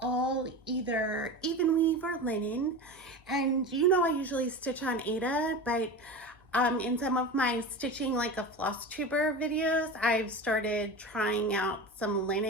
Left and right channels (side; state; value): both; normal; correlation 0.28